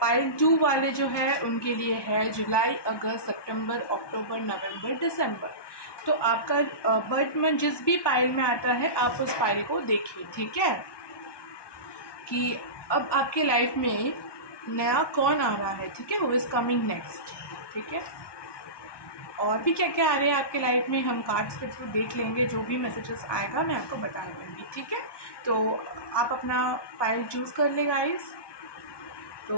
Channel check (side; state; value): right; late; 1.2 ms